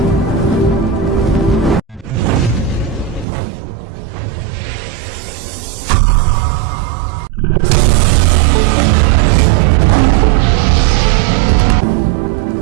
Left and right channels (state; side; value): drops out; left; at 3.2 s